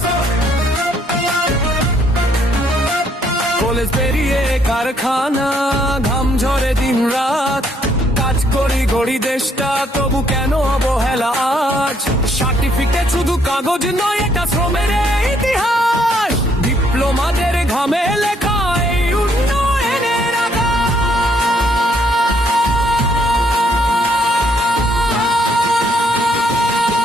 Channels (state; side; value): normal; both; correlation 0.69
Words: কলেজ পেরিয়ে কারখানা, ঘাম ঝরে দিন রাত, কাজ করি গড়ি দেশটা, তবু কেন অবহেলা আজ? সার্টিফিকেট শুধু কাগজ নয়, এটা শ্রমের ইতিহাস, ডিপ্লোমাদের ঘামে লেখা এই উন্নয়নের আকাশ।